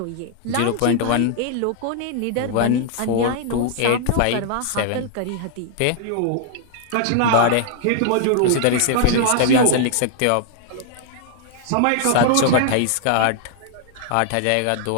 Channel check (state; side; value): different; both; correlation 0.00